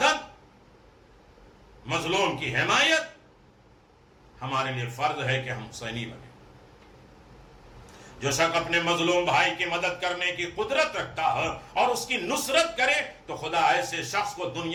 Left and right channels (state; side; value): identical; both; correlation 1.00